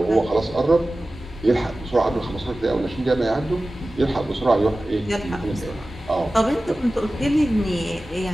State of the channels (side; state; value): both; normal; correlation 0.96